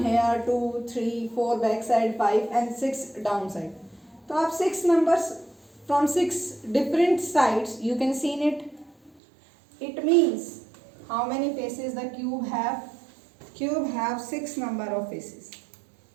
here, 2, 3, 4 backside, 5 and 6 downside. So आप 6 numbers from 6 different sides you can see in it. It means how many faces the cube have? Cube have 6 number of faces.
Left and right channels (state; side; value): drops out; left; at 9.2 s